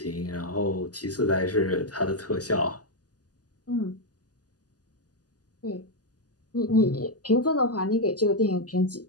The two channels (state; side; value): late; right; 0.68 ms